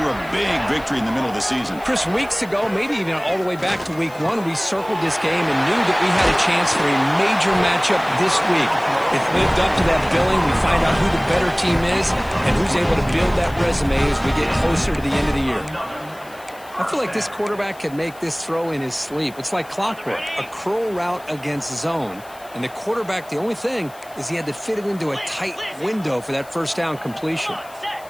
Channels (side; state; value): left; noise; hiss, 23 dB below the sound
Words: a big victory in the middle of the season. Chris, weeks ago, maybe even all the way back to week 1, we circled this game and knew that we had a chance for a major matchup this week. It lived up to that billing. We find out who the better team is and who's able to build that resume as we get closer to the end of the year. I feel like this quarterback could make this throw in his sleep. It's like clockwork, a curl route against zone. And the quarterback, the only thing is he had to fit it into a tight window for that first down completion.